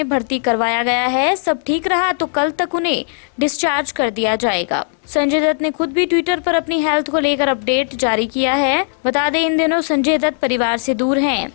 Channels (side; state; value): right; silent; digital silence